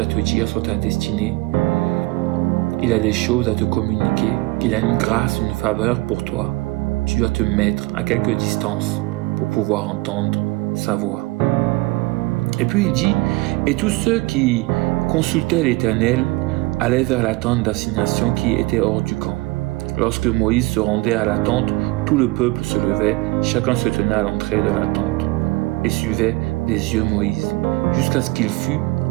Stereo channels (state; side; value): quieter; left; 22.4 dB